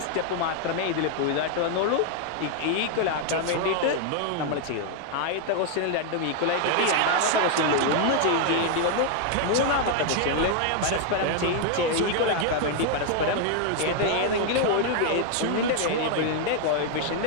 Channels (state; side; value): different; both; correlation 0.00